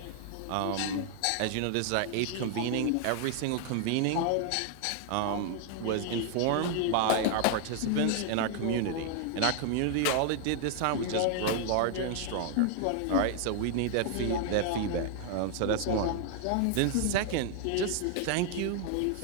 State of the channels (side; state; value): both; different; correlation 0.00